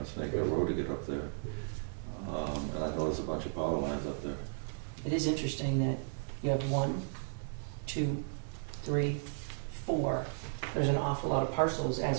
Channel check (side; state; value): left; silent; 55 dB below the other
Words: Snake Hill Road to get up there. And I noticed a bunch of power lines up there. it is interesting that you have 1, 2, 3, 4. There's an awful lot of parcels